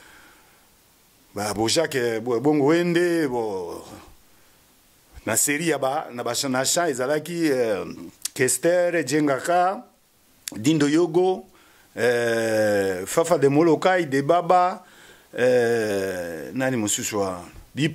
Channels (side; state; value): both; identical; correlation 1.00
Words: ba bojake bongo wende bo na série yaba na bashana sha ezalaki Kester Jengaka Dindo Yogo Fafa de Molokai de Baba nani mususwa